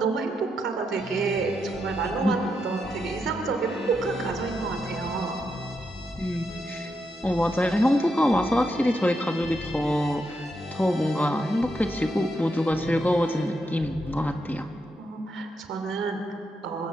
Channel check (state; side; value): normal; both; correlation 0.82